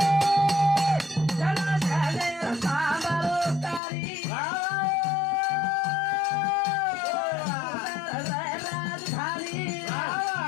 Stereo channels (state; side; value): drops out; right; at 3.8 s